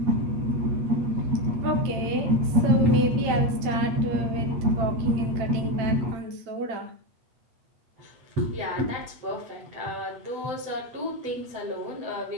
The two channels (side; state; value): left; late; 8.9 ms